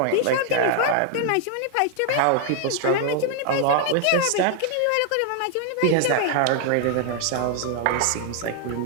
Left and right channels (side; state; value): both; different; correlation 0.00